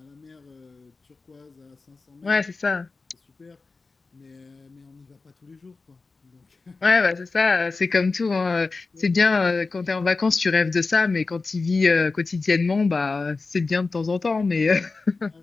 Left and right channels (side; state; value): right; quieter; 4.0 dB